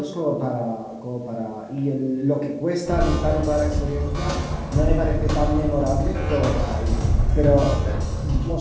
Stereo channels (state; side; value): identical; both; correlation 1.00